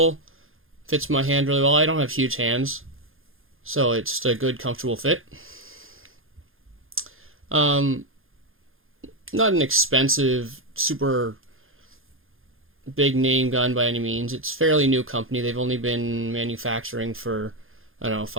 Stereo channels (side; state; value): left; late; 0.60 ms